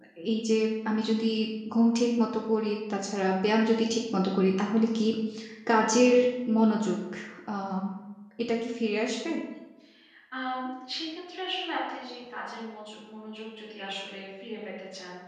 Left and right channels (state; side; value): identical; both; correlation 1.00